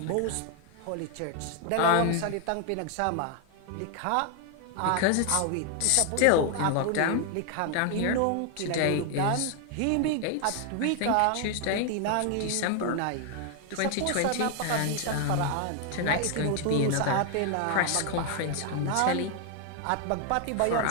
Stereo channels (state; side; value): different; both; correlation 0.00